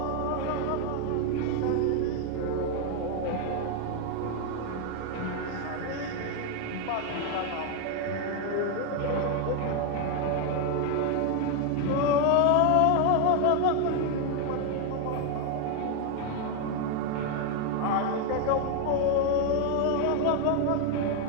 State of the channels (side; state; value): both; different; correlation 0.01